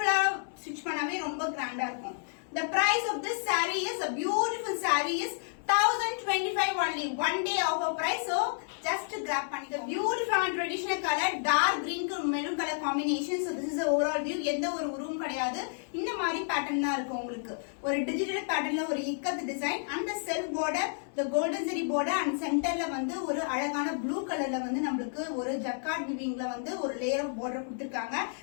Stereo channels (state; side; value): silent; right; 57 dB below the other